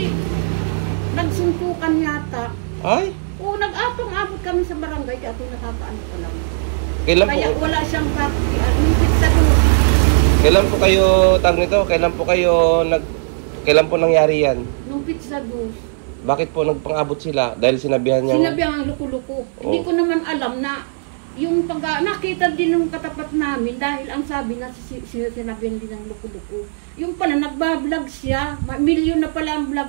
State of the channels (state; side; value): silent; left; digital silence